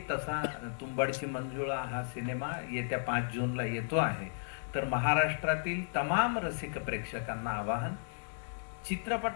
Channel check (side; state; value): right; silent; digital silence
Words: तसा तुंबाडची मंजुळा हा सिनेमा येत्या 5 जूनला येतो आहे. तर महाराष्ट्रातील तमाम रसिक प्रेक्षकांना आवाहन,